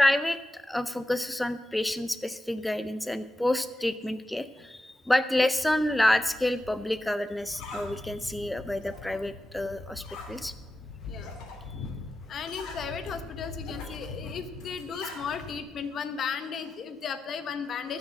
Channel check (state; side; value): normal; both; correlation 0.91